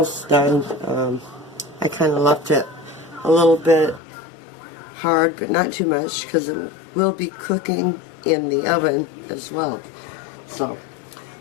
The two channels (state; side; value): drops out; right; at 4.0 s